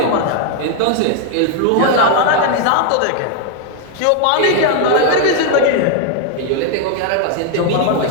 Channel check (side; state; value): both; different; correlation 0.00